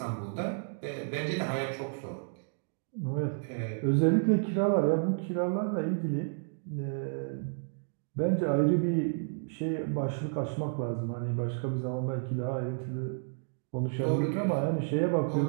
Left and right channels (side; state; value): left; silent; digital silence